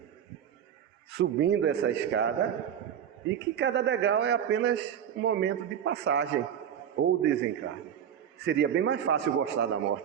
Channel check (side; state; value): left; quieter; 9.2 dB